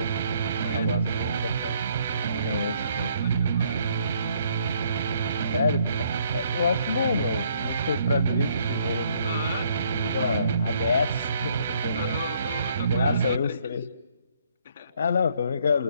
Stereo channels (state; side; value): inverted; both; correlation -0.67